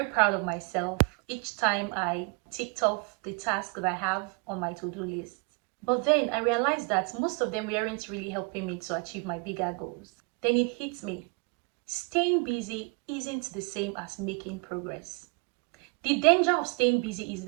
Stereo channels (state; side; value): quieter; left; 34.3 dB